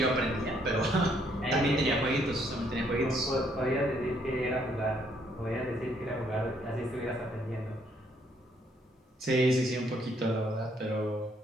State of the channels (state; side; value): normal; both; correlation 0.69